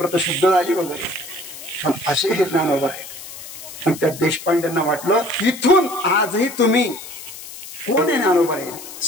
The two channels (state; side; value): noise; left; hiss, 13 dB below the sound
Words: झाली वगैरे. पण असे हे ज्ञानोबा आहे. आणि त्या देशपांड्यांना वाटलं इथून आजही तुम्ही कोण आहे ज्ञानोबा आहे,